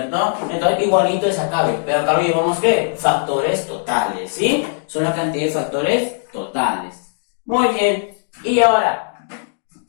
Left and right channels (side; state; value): right; silent; digital silence